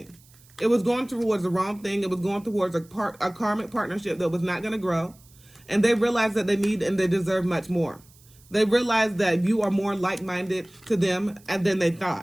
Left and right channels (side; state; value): right; noise; hiss, 27 dB below the sound